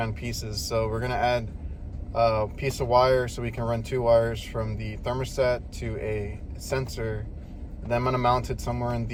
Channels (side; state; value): both; identical; correlation 1.00